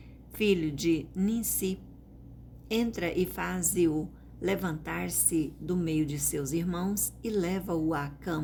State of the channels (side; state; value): both; identical; correlation 1.00